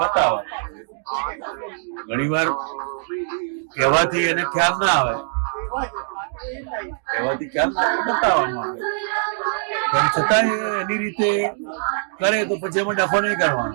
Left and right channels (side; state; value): left; silent; digital silence